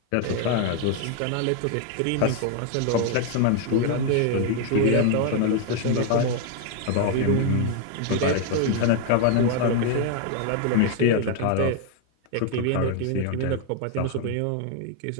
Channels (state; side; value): different; both; correlation 0.00